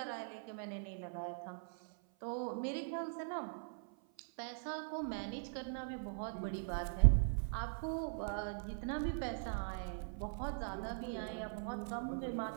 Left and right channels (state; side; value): silent; left; 50 dB below the other